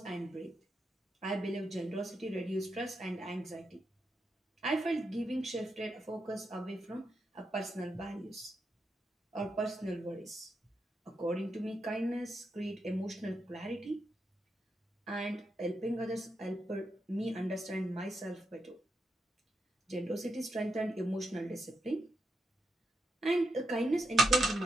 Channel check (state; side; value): normal; both; correlation 0.84